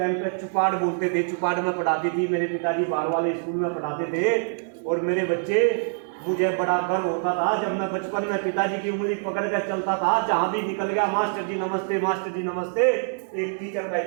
पे चुपाड़ बोलते थे, चुपाड़ में पढ़ाती थी। मेरे पिताजी बाहर वाले स्कूल में पढ़ाते थे। और मेरे बच्चे, मुझे बड़ा गर्व होता था जब मैं बचपन में पिताजी की उंगली पकड़ कर चलता था। जहां भी निकल गया मास्टर जी नमस्ते, मास्टर जी नमस्ते। एक टीचर का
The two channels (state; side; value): silent; left; digital silence